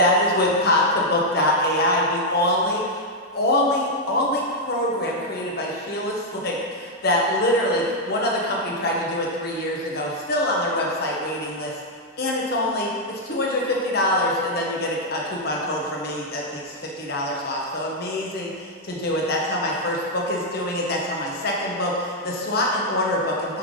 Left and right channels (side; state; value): both; normal; correlation -0.02